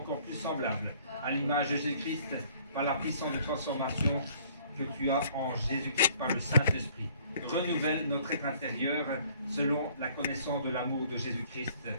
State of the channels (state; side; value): inverted; both; correlation -0.58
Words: plus semblables à l'image de Jésus-Christ par la puissance de transformation que tu as en Jésus-Christ par le Saint-Esprit. Renouvelle notre être intérieur selon la connaissance de l'amour de Jésus-Christ